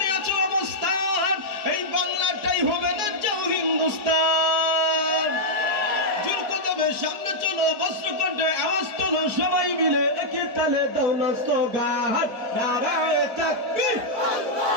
নিয়েছে অবস্থান এই বাংলাটাই হবে না যাও হিন্দুস্তান জোর কদমে সামনে চলো বস্ত্র কণ্ঠে আওয়াজ তোলো সবাই মিলে একই তালে দাও না স্লোগান নারায়ে তাকবীর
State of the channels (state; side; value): late; left; 4.9 ms